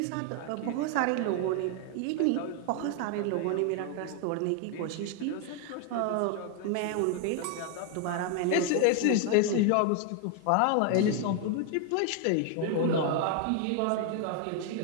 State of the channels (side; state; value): both; different; correlation 0.01